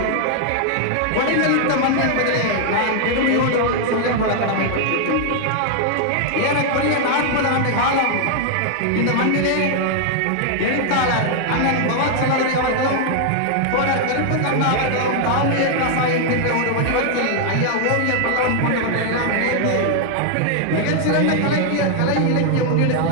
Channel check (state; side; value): different; both; correlation 0.00